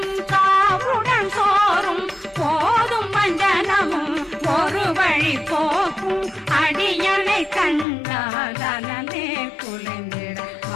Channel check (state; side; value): drops out; right; at 7.9 s